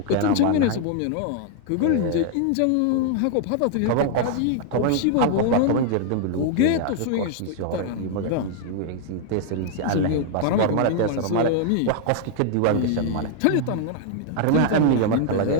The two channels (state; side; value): different; both; correlation 0.00